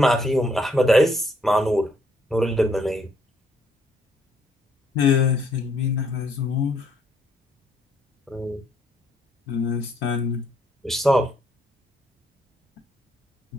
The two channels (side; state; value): both; normal; correlation 0.69